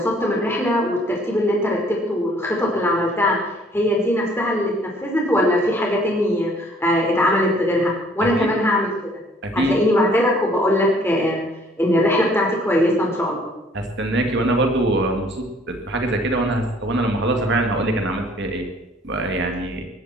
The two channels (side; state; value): both; normal; correlation 0.59